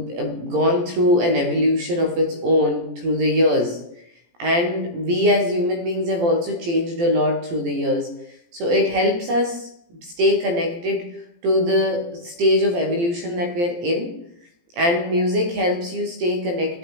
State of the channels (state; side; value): late; left; 17 ms